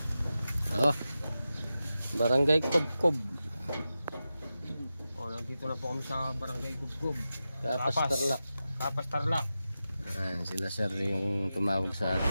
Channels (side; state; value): both; inverted; correlation -0.92